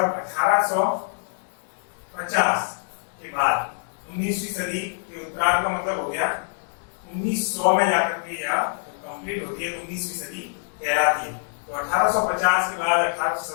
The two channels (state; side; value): silent; right; digital silence